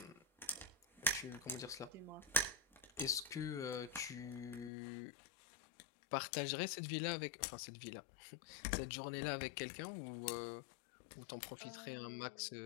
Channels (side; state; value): right; drops out; at 4.7 s